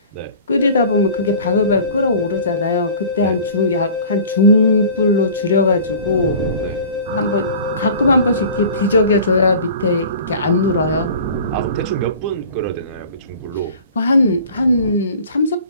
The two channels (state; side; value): inverted; both; correlation -0.43